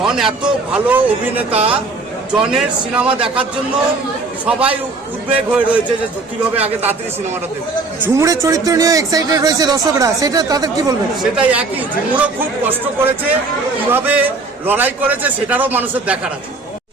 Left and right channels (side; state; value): left; quieter; 3.7 dB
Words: এত ভালো অভিনেতা, জনের সিনেমা দেখার জন্য সবাই উদ্বেগ হয়ে রয়েছে যে কিভাবে আগে তাড়াতাড়ি সিনেমাটা দেখবে। ঝুমুরের চরিত্র নিয়ে এক্সাইটেড রয়েছে দর্শকরা, সেটা তাদের কি বলবেন? সেটাই একই, ঝুমুরও খুব কষ্ট করেছে, কিভাবে লড়াই করেছে সেটারও মানুষের দেখার আছে।